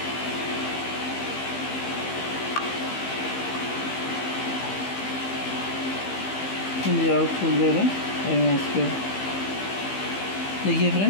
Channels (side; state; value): right; late; 15 ms